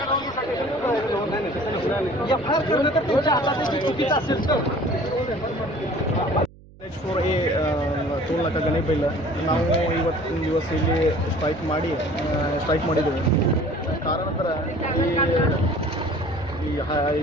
NH4A ಟೋಲ್ ನಾಕ ಗಣಿಬಿಲ್ಲ ನಾವು ಇವತ್ತಿನ ದಿವಸ ಇಲ್ಲಿ ಸ್ಟ್ರೈಕ್ ಮಾಡಿದ್ದೇವೆ. ಕಾರಣಾಂತರ ಈ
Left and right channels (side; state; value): right; noise; hum, 23 dB below the sound